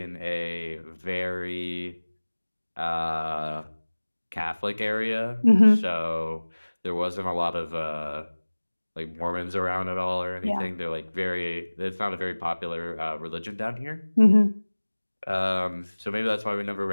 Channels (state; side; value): inverted; both; correlation -1.00